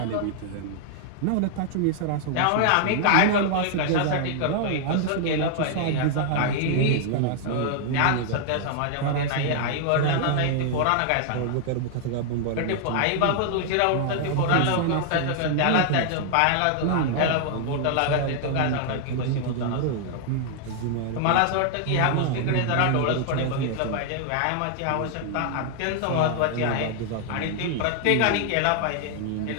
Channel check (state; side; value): different; both; correlation 0.00